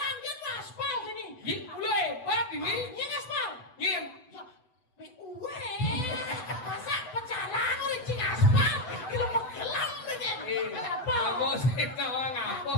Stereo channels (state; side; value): late; right; 7.9 ms